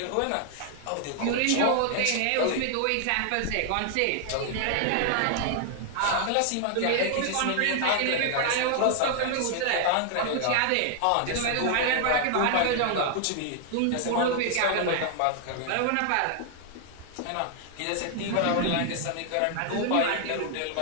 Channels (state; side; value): different; both; correlation 0.00